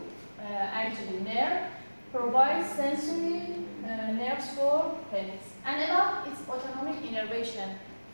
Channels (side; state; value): both; inverted; correlation -1.00